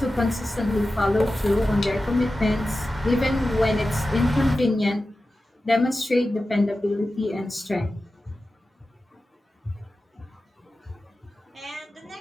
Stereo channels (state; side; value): normal; both; correlation 0.94